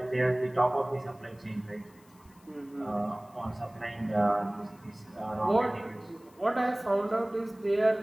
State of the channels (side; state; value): left; noise; hiss, 29 dB below the sound